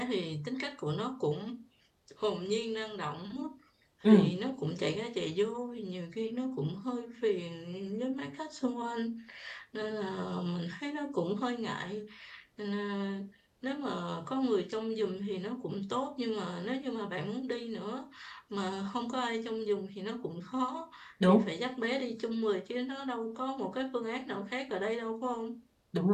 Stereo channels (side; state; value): both; identical; correlation 1.00